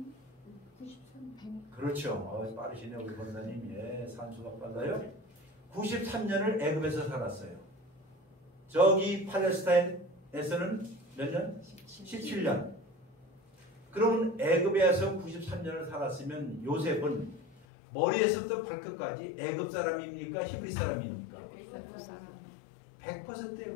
그렇죠. 빠르시네요 우리 권사님. 예, 산수가 빨라요. 93년을 애굽에서 살았어요. 저기 팔레스타인에서는 몇 년? 17년. 그러면 애굽에서 93년을 살았으면 요셉은 머리에서부터 발끝까지 애굽 사람입니까? 히브리 사람입니까? 100%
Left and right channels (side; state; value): right; drops out; at 17.7 s